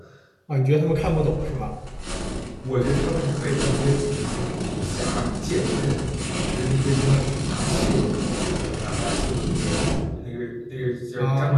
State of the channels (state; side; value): identical; both; correlation 1.00